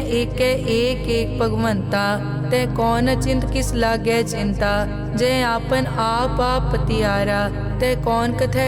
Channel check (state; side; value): identical; both; correlation 1.00